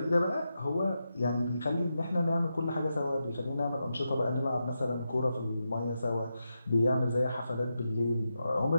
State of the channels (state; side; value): inverted; both; correlation -0.88